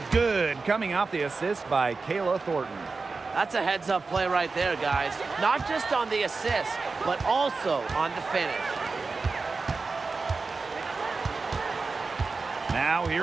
good, coming off the assist by Kayla Thornton. That's a heads-up play right there, guys. Not just on the assist, but also on the finish. Now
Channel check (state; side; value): quieter; left; 4.2 dB